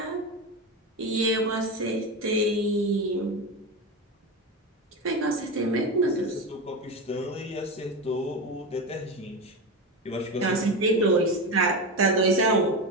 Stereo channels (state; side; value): normal; both; correlation 0.19